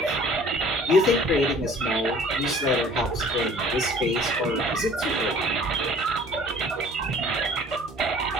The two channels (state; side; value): normal; both; correlation 0.51